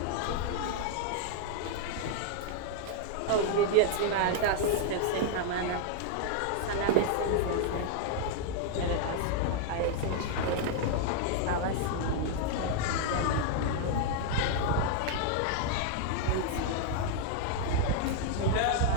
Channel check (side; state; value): both; different; correlation 0.00